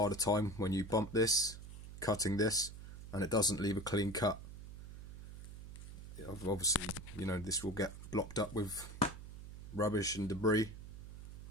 time when you bump this, cutting this, and it doesn't leave a clean cut. Obviously, you know, this will get blocked up with rubbish and debris,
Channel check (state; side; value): noise; right; hum, 12 dB below the sound